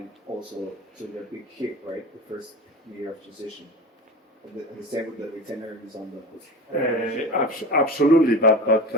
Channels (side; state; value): both; normal; correlation 0.31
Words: also to a big hit, right? The first year of transition. And the same with the retainer is on the. Absolutely, but